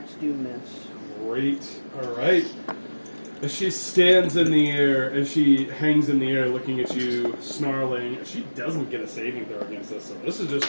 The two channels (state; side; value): inverted; both; correlation -1.00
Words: do miss. Great. All right. As she stands in the air, as she hangs in the air looking at you, snarling, she doesn't get a saving throw against us, so this is just